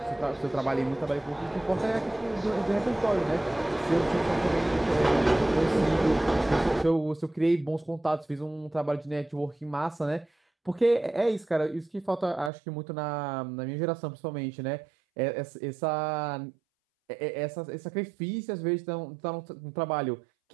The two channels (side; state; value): left; drops out; at 12.5 s